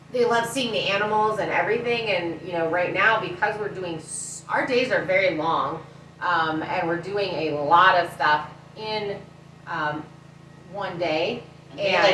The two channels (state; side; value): identical; both; correlation 1.00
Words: they love seeing the animals and everything. And, right now, because our days are very long, and we're doing a lot of stuff in one day.